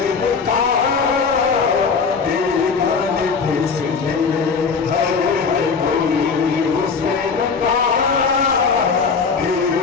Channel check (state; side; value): quieter; right; 5.3 dB